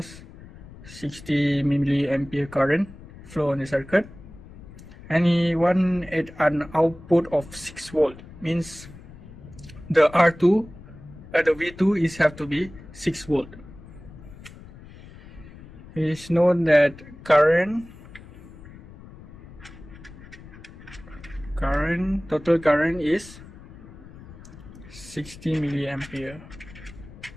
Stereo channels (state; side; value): noise; left; rumble, 18 dB below the sound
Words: 60 milliampere current flow on the circuit, and he wants an output of 6 volt, means the R2 the V2 is have to be 6 volt. It is known that total current is 60 milliampere,